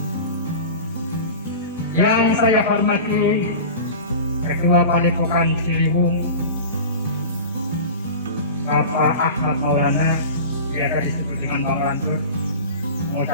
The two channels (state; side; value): inverted; both; correlation -0.33